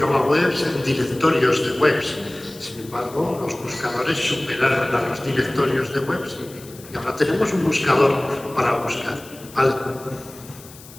webs en directorios de webs. Sin embargo, los buscadores superaron a los directorios de webs y ahora tenemos un buscador para buscar. ¿Vale?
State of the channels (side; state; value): left; noise; hiss, 20 dB below the sound